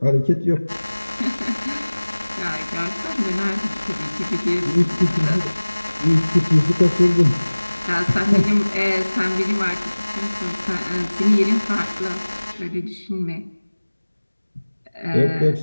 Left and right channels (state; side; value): inverted; both; correlation -1.00